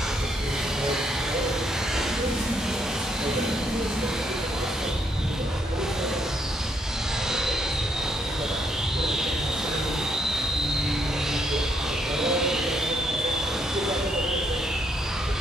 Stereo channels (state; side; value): normal; both; correlation 0.73